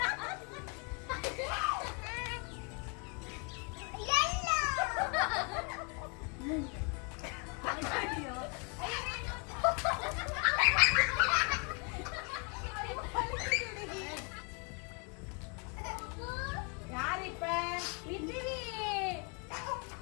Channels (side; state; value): right; quieter; 35.0 dB